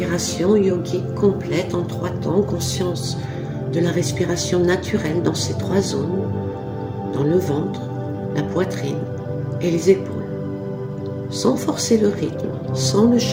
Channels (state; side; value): identical; both; correlation 1.00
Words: yogique complète en 3 temps, conscience de la respiration naturelle dans ces 3 zones, dans le ventre, la poitrine et les épaules. Sans forcer le rythme, sans le